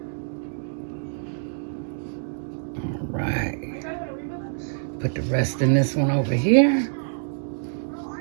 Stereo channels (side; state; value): left; silent; digital silence